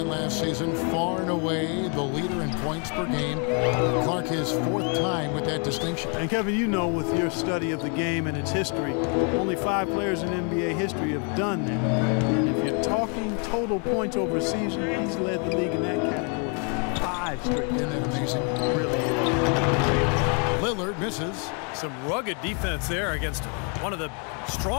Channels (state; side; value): quieter; right; 38.2 dB